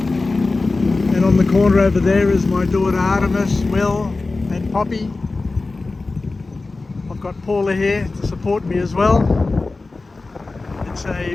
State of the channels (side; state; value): right; quieter; 3.5 dB